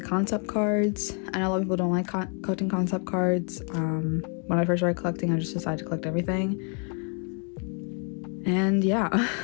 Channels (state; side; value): quieter; right; 39.7 dB